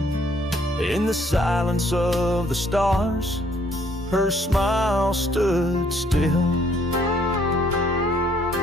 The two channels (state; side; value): normal; both; correlation 0.65